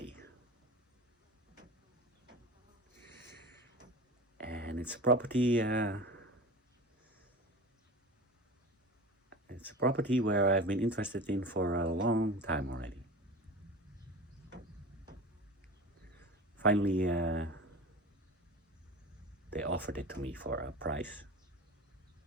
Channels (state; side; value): normal; both; correlation 0.33